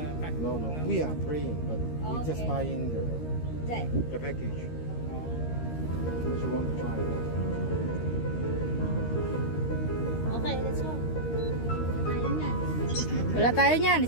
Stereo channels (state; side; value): late; right; 13 ms